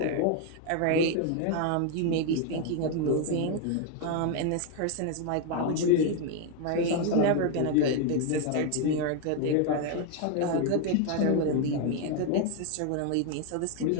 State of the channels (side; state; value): both; different; correlation 0.01